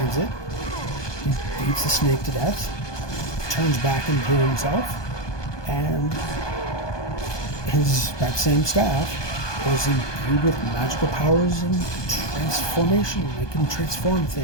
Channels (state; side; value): late; right; 1.2 ms